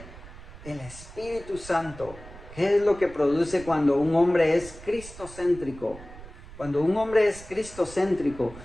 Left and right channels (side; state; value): right; noise; rumble, 16 dB below the sound